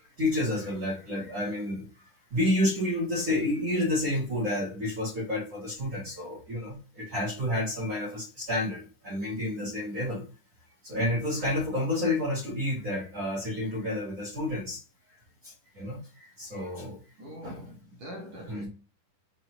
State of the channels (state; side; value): late; left; 10 ms